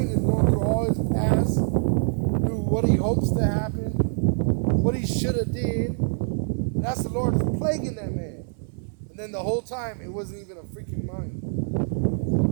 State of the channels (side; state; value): left; silent; digital silence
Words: is going through all his past, through what he hopes to happen, what he should have did. And that's the Lord is plaguing that man. And then the whole time, it wasn't even a freaking mine.